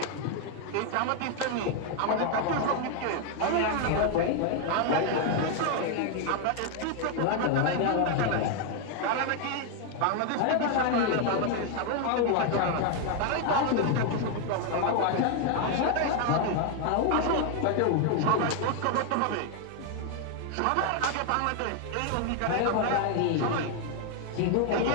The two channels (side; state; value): both; different; correlation 0.00